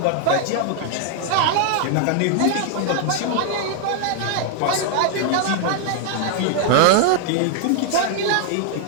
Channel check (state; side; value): different; both; correlation 0.00